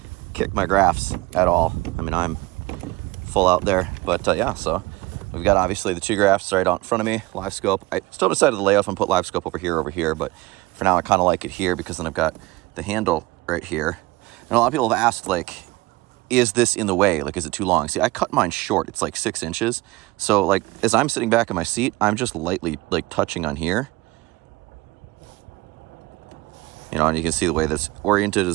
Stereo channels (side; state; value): left; quieter; 20.8 dB